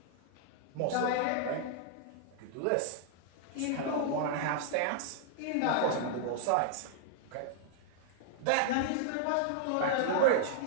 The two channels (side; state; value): both; different; correlation -0.01